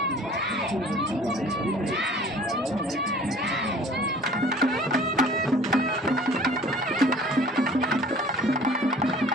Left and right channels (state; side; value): normal; both; correlation 0.48